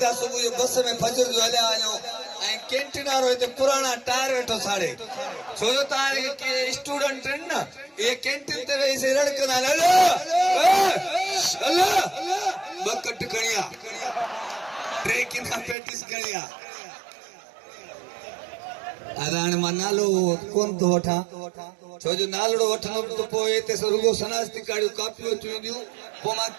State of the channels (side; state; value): left; drops out; at 15.8 s